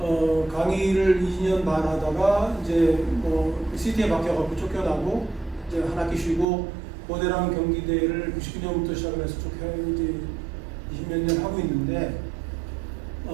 강의를 2년 반 하다가 이제 시티에 맡겨갖고 쫓겨나고 이제 한 학기 쉬고 고대랑 경기대를 99년부터 시작을 해서 쭉 이제 20몇 년 하고 있는데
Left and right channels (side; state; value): left; drops out; at 6.5 s